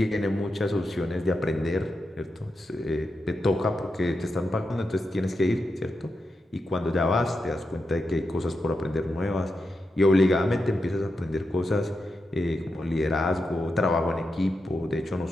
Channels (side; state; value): both; normal; correlation 0.87